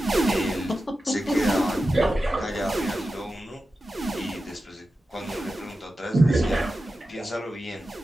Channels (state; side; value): normal; both; correlation 0.92